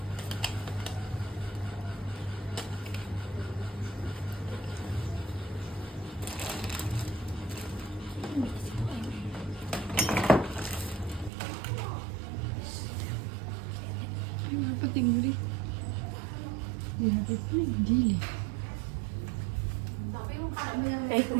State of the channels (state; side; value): drops out; left; at 11.3 s